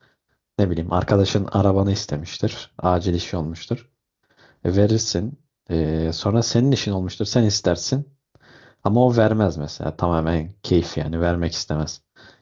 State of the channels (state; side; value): identical; both; correlation 1.00